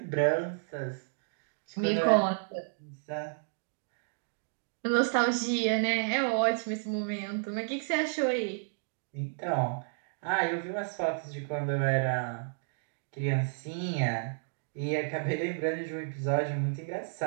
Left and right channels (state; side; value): silent; left; digital silence